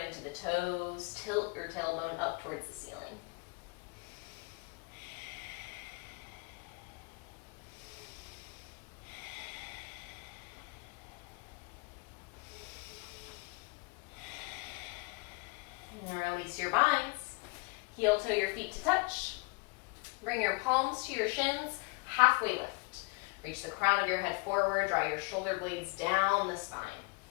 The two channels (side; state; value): right; quieter; 28.6 dB